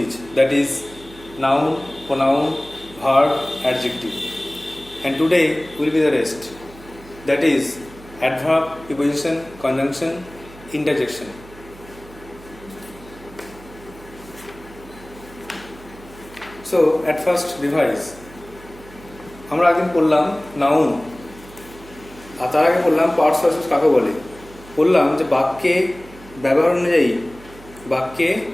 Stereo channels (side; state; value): right; noise; hum, 20 dB below the sound